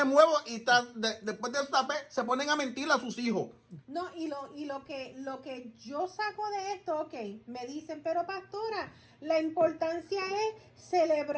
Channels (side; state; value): both; identical; correlation 1.00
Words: huevos, y después de se ponen a mentir a sus hijos. No, y lo que yo saco de esto, ok, me dicen, pero pastora, la importancia es